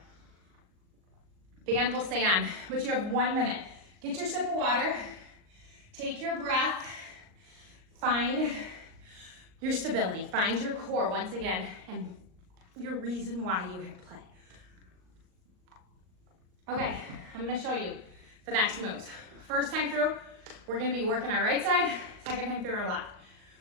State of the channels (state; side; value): late; left; 38 ms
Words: Band will stay on, but you have 1 minute. Get your sip of water, take your breath, find your stability, find your core once again, and your reason why you hit play. Okay, I'm gonna show you the next moves. First time through, we're gonna be working our right side, second time through our left.